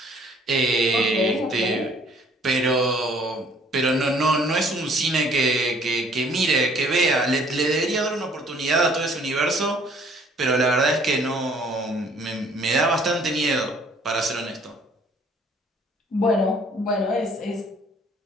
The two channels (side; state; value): both; normal; correlation 0.58